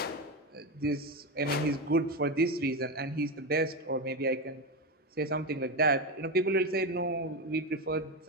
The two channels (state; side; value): normal; both; correlation 0.14